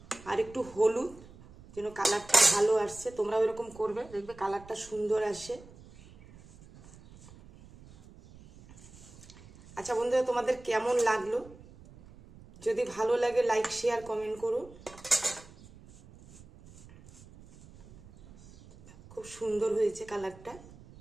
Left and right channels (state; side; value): noise; right; rumble, 21 dB below the sound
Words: আর একটু হলুদ, যেন কালারটা ভালো আসছে। তোমরাও এরকম করবে, দেখবে কালারটা সুন্দর আসে। আচ্ছা বন্ধুরা, তোমাদের কেমন লাগলো? যদি ভালো লাগে লাইক, শেয়ার, কমেন্ট করো। খুব সুন্দর হয়েছে কালারটা।